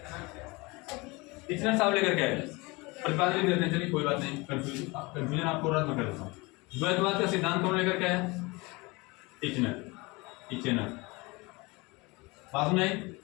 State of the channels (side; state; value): right; quieter; 25.0 dB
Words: टीचर साहब लेकर के आए, प्रतिपादन देते हैं। चलिए कोई बात नहीं, कंफ्यूजन आपको रद्द मैं कर देता हूँ। द्वैतवाद का सिद्धांत कौन लेकर के आया? टीचर। बात में